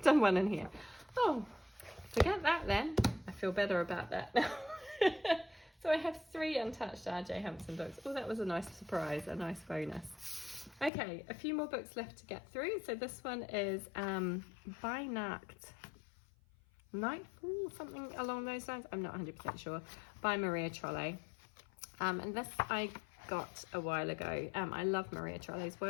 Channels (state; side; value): drops out; right; at 10.9 s